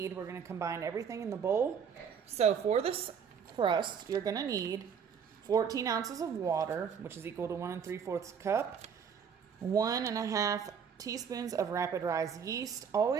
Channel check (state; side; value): quieter; left; 7.1 dB